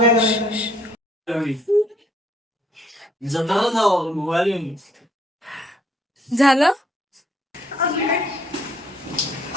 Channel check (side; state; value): both; normal; correlation 0.65